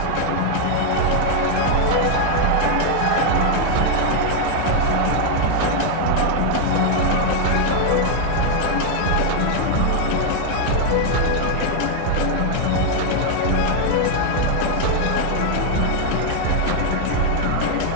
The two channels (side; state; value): both; different; correlation 0.00